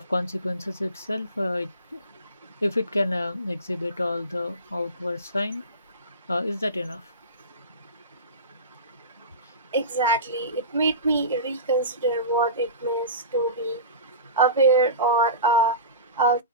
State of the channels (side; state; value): both; inverted; correlation -0.31